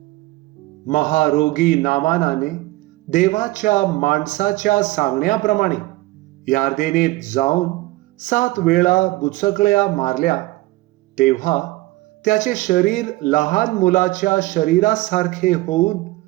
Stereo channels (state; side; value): quieter; left; 19.6 dB